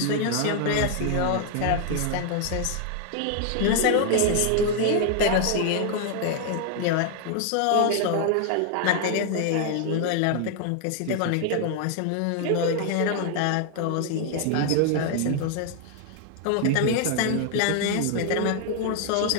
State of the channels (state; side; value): different; both; correlation 0.00